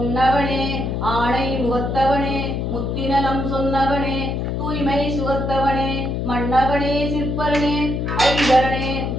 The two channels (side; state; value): left; noise; hum, 1 dB below the sound